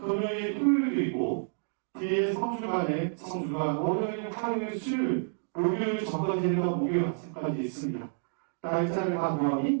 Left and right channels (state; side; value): silent; left; digital silence